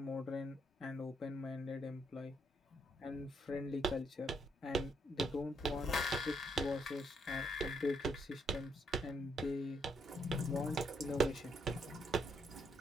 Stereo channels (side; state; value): both; normal; correlation 0.75